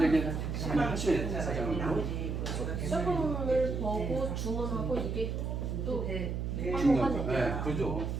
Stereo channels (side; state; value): right; noise; hum, 2 dB below the sound